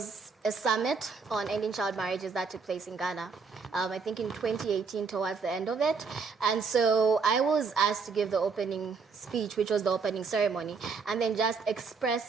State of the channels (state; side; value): quieter; left; 5.0 dB